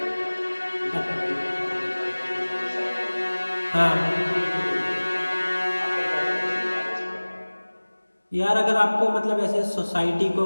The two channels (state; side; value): inverted; both; correlation -1.00